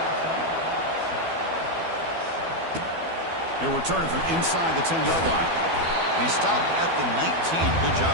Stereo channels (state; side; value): late; left; 12 ms